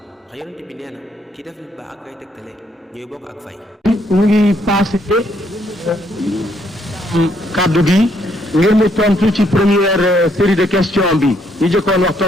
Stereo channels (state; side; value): normal; both; correlation 0.71